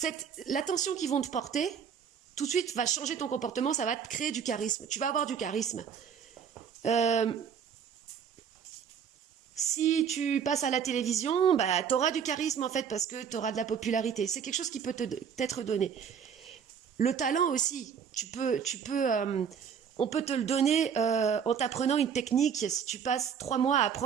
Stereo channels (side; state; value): left; quieter; 7.4 dB